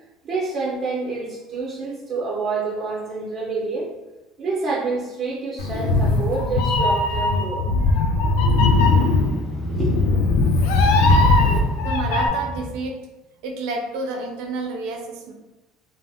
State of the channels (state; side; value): normal; both; correlation 0.47